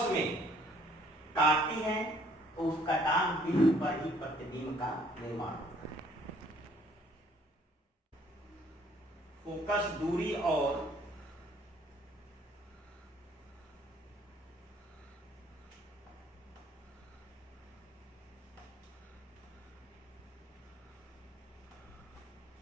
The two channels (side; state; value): both; normal; correlation 0.61